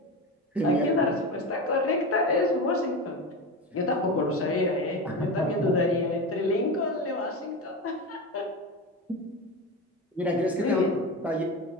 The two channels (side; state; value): both; normal; correlation 0.22